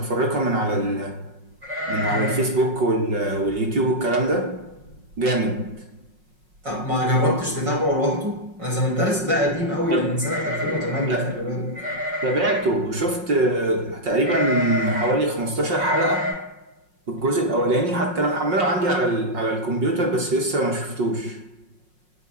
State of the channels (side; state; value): left; late; 5.5 ms